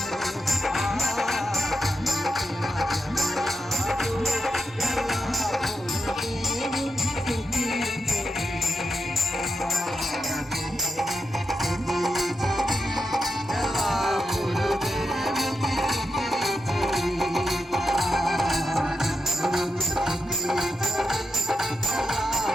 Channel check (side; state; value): both; normal; correlation 0.87